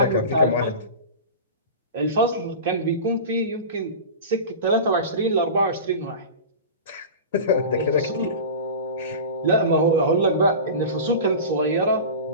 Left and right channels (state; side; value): inverted; both; correlation -0.31